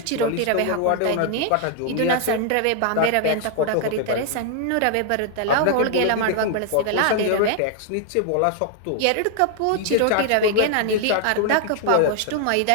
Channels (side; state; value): both; different; correlation 0.00